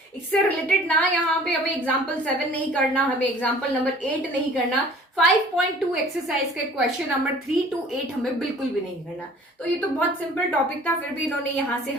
इससे रिलेटेड ना यहाँ पे हमें एग्जाम्पल 7 नहीं करना, हमें एग्जाम्पल नंबर 8 नहीं करना, 5.2 एक्सरसाइज के क्वेश्चन नंबर 3 to 8 हमें बिल्कुल भी नहीं करना। तो ये तो बहुत सिंपल टॉपिक था, फिर भी इन्होंने यहाँ से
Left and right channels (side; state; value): both; normal; correlation 0.50